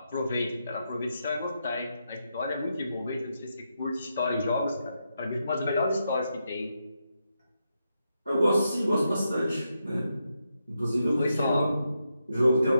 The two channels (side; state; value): both; inverted; correlation -0.84